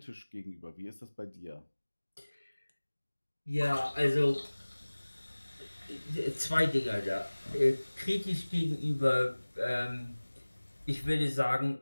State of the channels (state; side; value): inverted; both; correlation -1.00